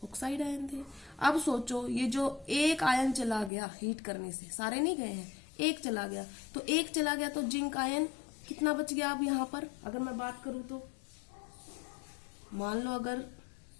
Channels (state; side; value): drops out; right; at 3.5 s